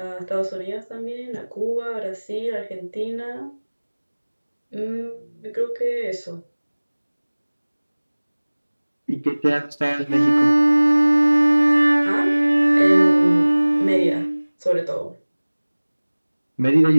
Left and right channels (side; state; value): both; inverted; correlation -1.00